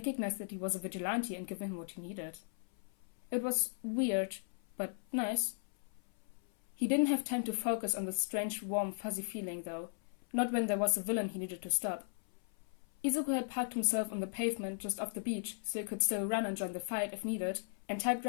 that he was a vigilante and given him what he needed. It was weird, but nice. He didn't have time to focus on the strange, warm, fuzzy feeling, though. Not when there was a villain he needed to stop. Izuku had parked himself on the pavement just off the beach, so he could still run and join the fight if needed, and typed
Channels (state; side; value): silent; right; 53 dB below the other